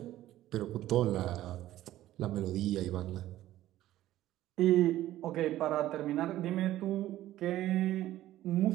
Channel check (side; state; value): left; quieter; 14.3 dB